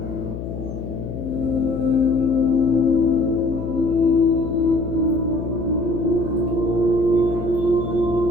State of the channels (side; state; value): left; noise; hum, 7 dB below the sound